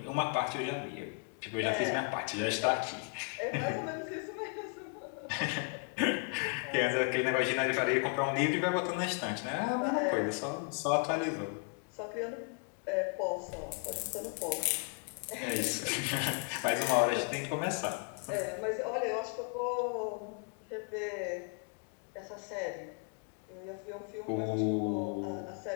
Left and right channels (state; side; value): quieter; right; 38.0 dB